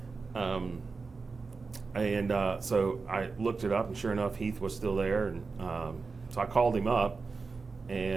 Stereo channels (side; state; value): left; quieter; 4.4 dB